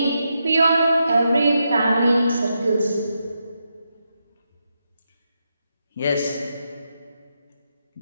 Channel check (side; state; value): both; inverted; correlation -0.85